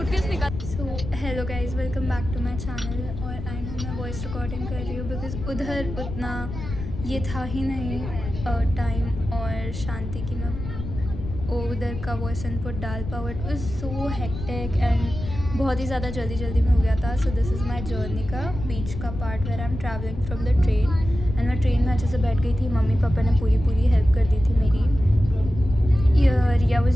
निकाल। So hello guys, welcome back to my channel. और आई नो मैं वॉइस रिकॉर्डिंग कर रही हूँ बिकॉज उधर उतना ये था ही नहीं टाइम और शांति की मैं उधर का वॉइस इनपुट डाल पाऊँ। It was so hectic and बहुत ही ज़्यादा जल्दी में हो गया था। So this is my journey का बीच का part where I am travelling from the train and मैं ट्रेन में अच्छे से बैठ गई थी। मम्मी पापा ने पूरी हेल्प कर दी थी मेरी। Riya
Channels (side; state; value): left; noise; rumble, 8 dB below the sound